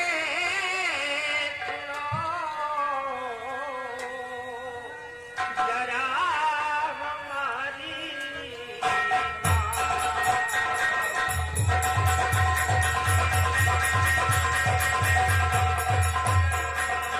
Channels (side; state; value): both; identical; correlation 1.00